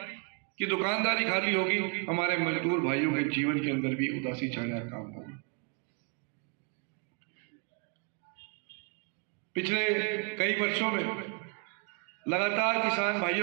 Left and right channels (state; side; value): quieter; left; 35.3 dB